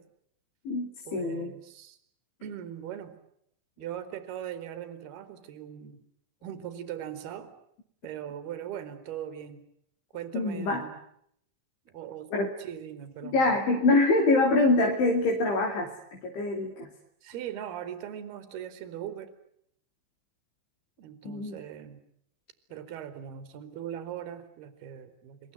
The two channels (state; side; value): late; right; 15 ms